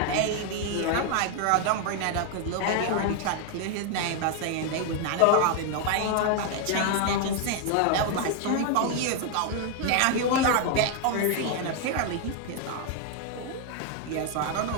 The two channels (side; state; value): both; different; correlation 0.00